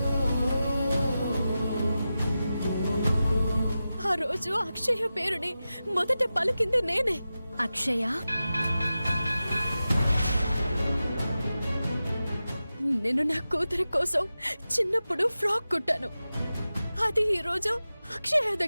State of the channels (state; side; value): inverted; both; correlation -0.93